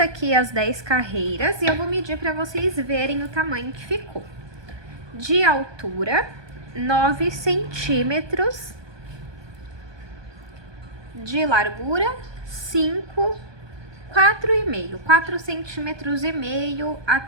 as 10 carreiras e eu vou medir para vocês verem o tamanho que ficou. De altura, 9 centímetros. De largura, 4 centímetros e meio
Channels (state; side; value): late; left; 1.2 ms